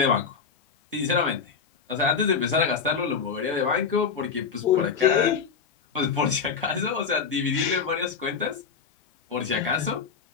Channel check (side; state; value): right; quieter; 5.9 dB